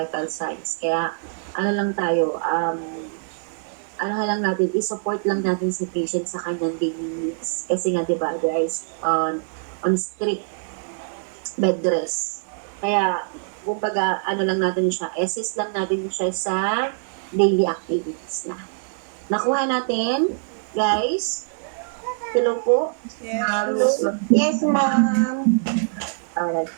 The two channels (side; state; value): left; silent; digital silence